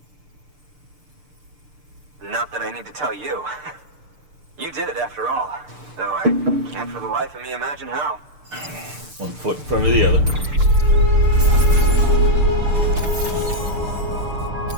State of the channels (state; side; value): late; left; 6.7 ms